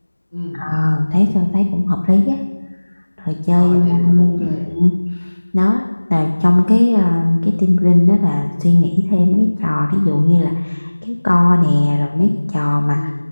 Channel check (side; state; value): both; inverted; correlation -1.00